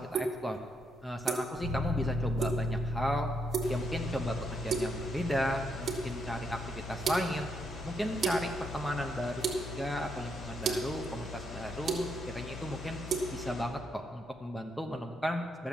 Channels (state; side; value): normal; both; correlation 0.77